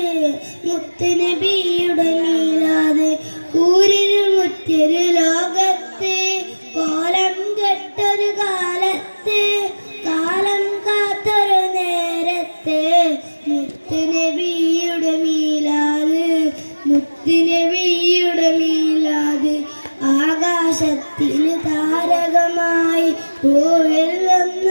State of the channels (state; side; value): inverted; both; correlation -1.00